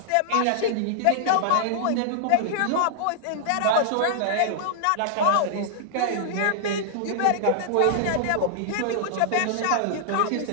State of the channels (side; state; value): both; different; correlation -0.01